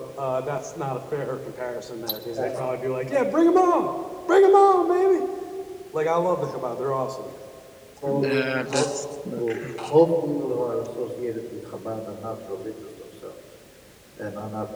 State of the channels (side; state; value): both; identical; correlation 1.00